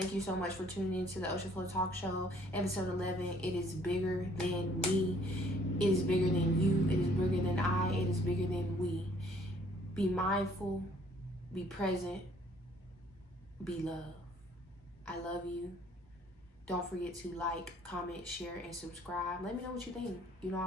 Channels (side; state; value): both; normal; correlation 0.60